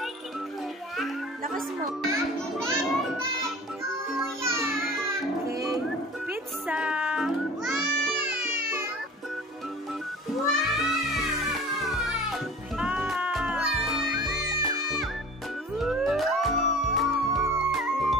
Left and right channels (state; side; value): normal; both; correlation 0.41